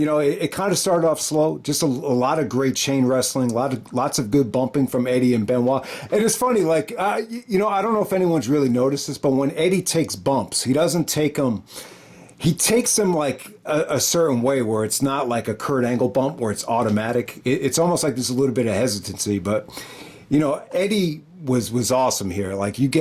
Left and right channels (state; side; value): identical; both; correlation 1.00